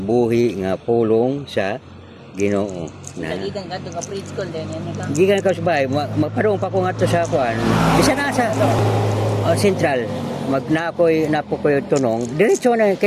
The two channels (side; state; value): both; identical; correlation 1.00